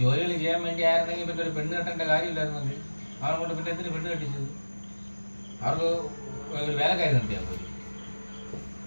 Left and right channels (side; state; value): both; inverted; correlation -1.00